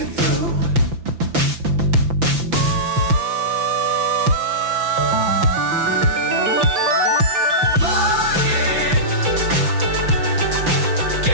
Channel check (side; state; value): left; late; 5.9 ms